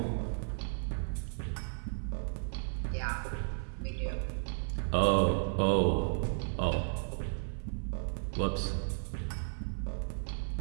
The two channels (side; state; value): left; silent; 55 dB below the other